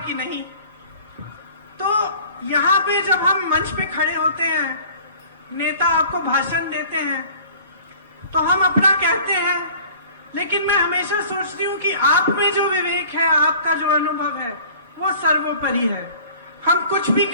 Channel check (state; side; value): inverted; both; correlation -0.47